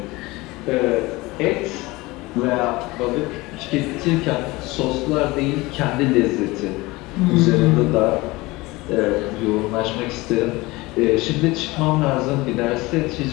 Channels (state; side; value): quieter; right; 21.5 dB